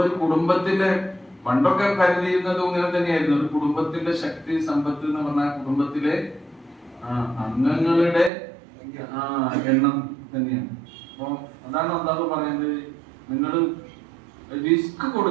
കുടുംബത്തിന്റെ, പണ്ടൊക്കെ കരുതിയിരുന്നതും ഇങ്ങനെ തന്നെയായിരുന്നു, ഒരു കുടുംബത്തിന്റെ ശക്തി സമ്പത്ത് എന്ന് പറഞ്ഞാൽ കുടുംബത്തിലെ അംഗങ്ങളുടെ എണ്ണം തന്നെയാണ്. അപ്പൊ അതാണ് അല്ലാഹു പറയുന്നത്, നിങ്ങൾ റിസ്ക്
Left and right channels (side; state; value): left; drops out; at 8.3 s